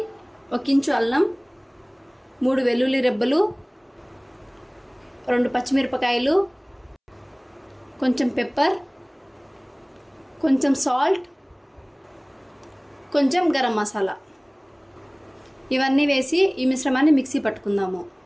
1 ఇంచు అల్లం, 3 వెల్లుల్లి రెబ్బలు, 2 పచ్చిమిరపకాయలు, కొంచెం పెప్పర్, కొంచెం సాల్ట్, కొంచెం గరం మసాలా, ఇవన్నీ వేసి ఈ మిశ్రమాన్ని మిక్సీ పట్టుకుందాము.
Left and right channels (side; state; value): both; identical; correlation 1.00